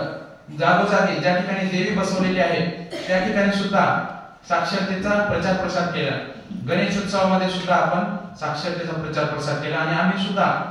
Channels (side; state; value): both; identical; correlation 1.00